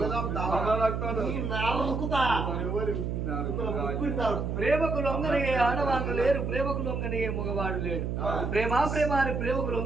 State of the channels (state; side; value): noise; right; hum, 2 dB below the sound